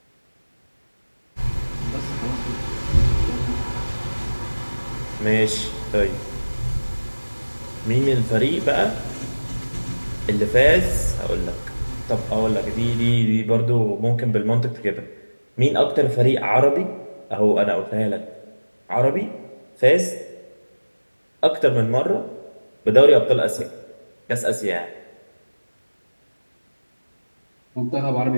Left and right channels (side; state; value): both; inverted; correlation -1.00